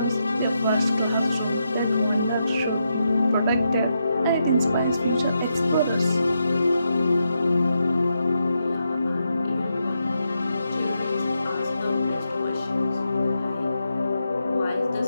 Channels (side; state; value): both; inverted; correlation -0.83